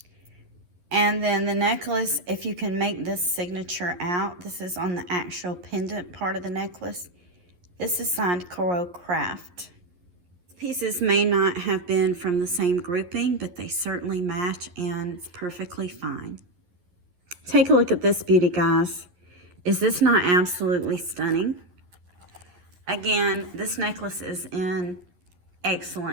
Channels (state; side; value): late; left; 11 ms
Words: And then the necklace, if you can make this signature out, this is on the actual pendant part of the necklace. This is signed Coro Craft. Pieces may not have been from the same grouping, but they certainly match and it's perfectly fine. Take a look at this beauty, guys. Is this not absolutely stunning? Again, this necklace is in